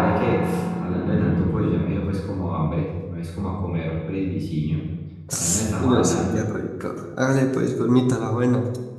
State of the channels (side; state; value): both; identical; correlation 1.00